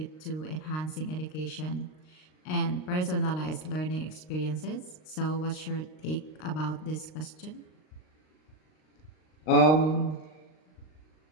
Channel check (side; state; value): right; late; 39 ms